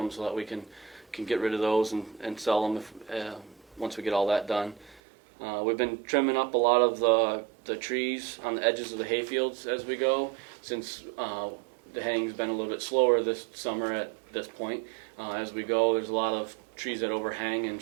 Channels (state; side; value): drops out; left; at 5.0 s